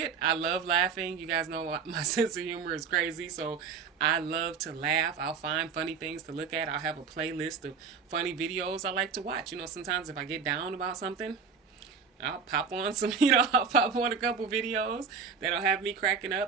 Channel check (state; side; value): quieter; left; 5.8 dB